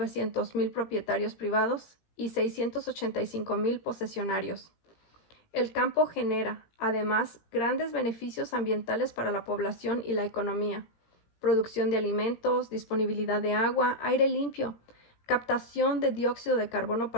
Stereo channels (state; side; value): late; right; 17 ms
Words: propietarios privados y 685.000 posesionarios. El campo genera, además, grandes beneficios ambientales para la población y la economía: producción de alimentos, disponibilidad de agua, aire limpio, captación de dióxido de carbono